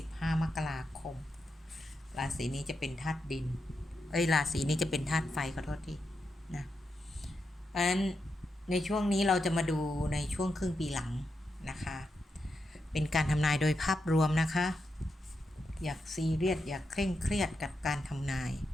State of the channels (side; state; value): both; normal; correlation 0.86